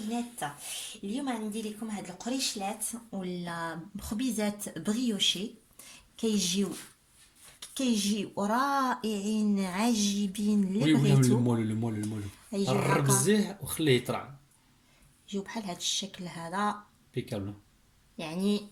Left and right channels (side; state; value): both; identical; correlation 1.00